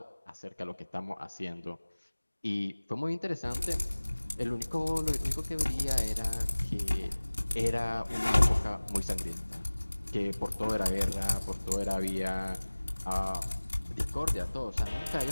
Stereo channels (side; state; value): both; inverted; correlation -1.00